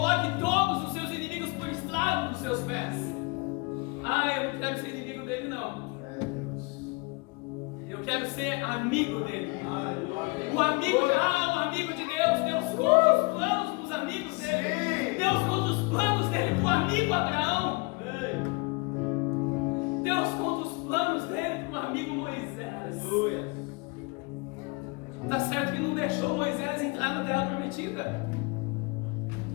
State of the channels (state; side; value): quieter; right; 28.6 dB